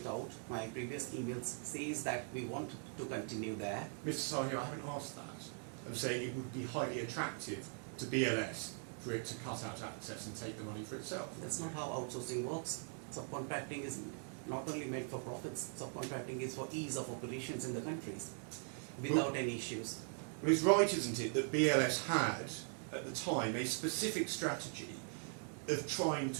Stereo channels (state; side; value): silent; left; 50 dB below the other